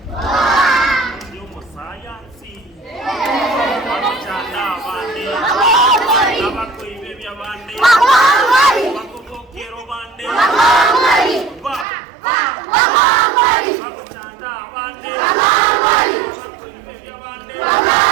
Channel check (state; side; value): drops out; left; at 11.9 s